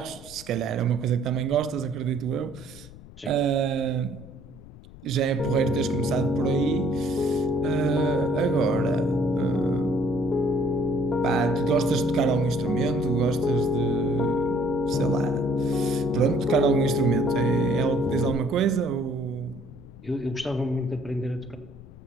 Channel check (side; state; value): left; noise; rumble, 19 dB below the sound